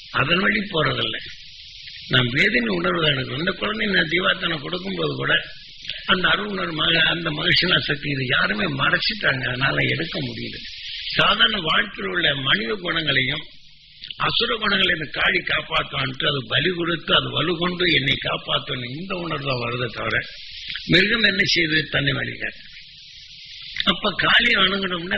அதன் வழி போறதில்லை. நாம் வேதனை உணர்வு தான் எடுக்கிறோம். இந்த குழந்தை நான் தீவாத்தனை கொடுக்கும்போது கூட அந்த அருணர் அந்த மகிழ்ச்சினா சக்தி இது யாருமே மறைச்சிட்டாங்க. அதனால எடுக்க முடியல. சாதாரண வாழ்க்கையில் உள்ள மனித குணங்களையும் அசுர குணங்களை இந்த காளி காப்பாற்றுவான்ட்டு அது பலி கொடுத்து அது வலு கொண்டு என்னை காப்பாற்றணும் இந்த உணர்வு தான் வருதை தவிர மிருகம் என்ன செய்து தன்னை வலிக்காது. அப்ப காளியை வணங்கணும்னா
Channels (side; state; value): both; identical; correlation 1.00